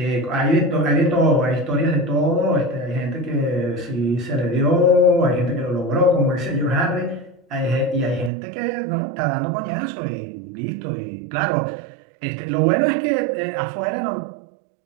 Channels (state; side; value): drops out; left; at 8.3 s